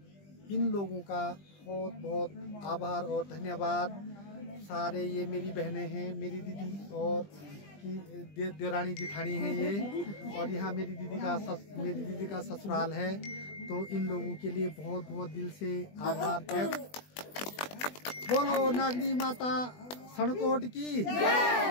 इन लोगों का बहुत बहुत आभार और धन्यवाद। सारे ये मेरी बहनें हैं, मेरी दीदी और की देवरानी जिठानी हैं ये। और यहाँ मेरी दीदी का ससुराल है। तो इन लोगों के लिए बहुत बहुत दिल से आभार व्यक्त। बोलो नागनी माता सनकोट की,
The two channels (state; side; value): late; right; 20 ms